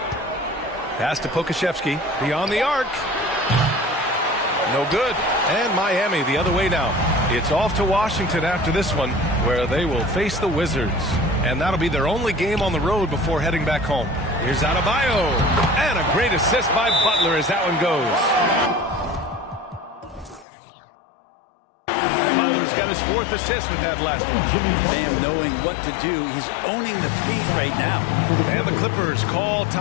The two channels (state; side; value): drops out; right; at 20.5 s